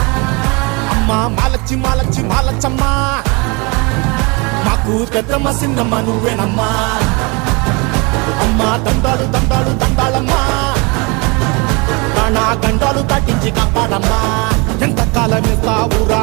అమ్మ మాలచ్చి మాలచ్చి మాలచ్చమ్మా మాకు పెద్దమ్మ సిన్నమ్మ నువ్వేనమ్మా అమ్మ దండాలు దండాలు దండాలమ్మా నా గండాలు తట్టించి కాపాడమ్మా ఎంతకాలం ఇస్తావురా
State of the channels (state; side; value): quieter; left; 28.9 dB